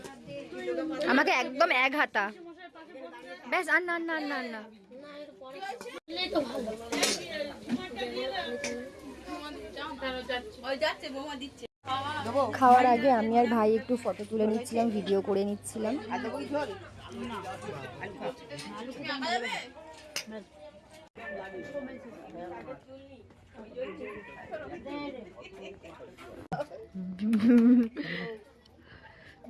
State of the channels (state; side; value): identical; both; correlation 1.00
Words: আমাকে একদম এক হাতা ব্যাস, আর না না না না। খাওয়ার আগে আমি আর ভাই একটু ফটো তুলে নিচ্ছিলাম, ভিডিও করে নিচ্ছিলাম।